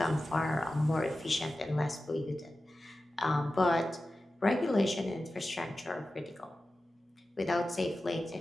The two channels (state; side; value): normal; both; correlation 0.94